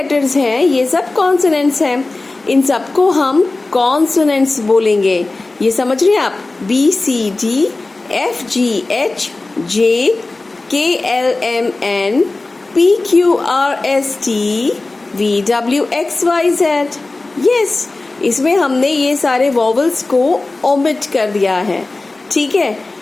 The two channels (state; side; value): quieter; right; 3.2 dB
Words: हैं ये सब कॉन्सोनेंट्स हैं. इन सबको हम कॉन्सोनेंट्स बोलेंगे. ये समझ रहे हैं आप, B C D F G H J K L M N P Q R S T V W X Y Z. Yes, इसमें हमने ये सारे वॉवल्स को ओमिट कर दिया है, ठीक है.